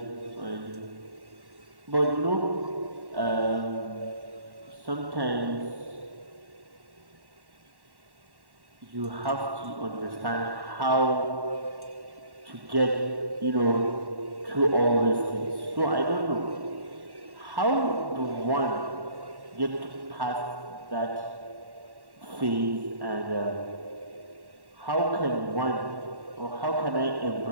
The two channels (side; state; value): left; late; 1.1 ms